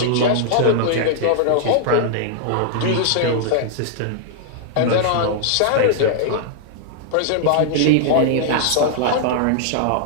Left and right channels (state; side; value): different; both; correlation -0.01